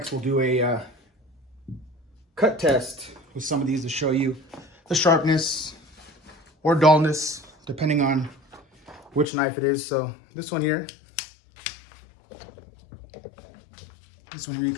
we'll do a cut test with some of these to show you the sharpness or dullness, depending on which knife it is. So this one here, you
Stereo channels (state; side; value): drops out; right; at 9.3 s